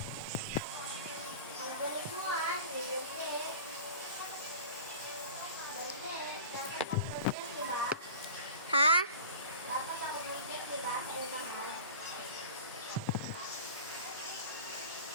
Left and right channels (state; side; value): inverted; both; correlation -0.38